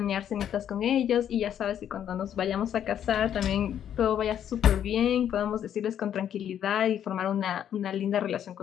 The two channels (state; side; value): quieter; right; 9.8 dB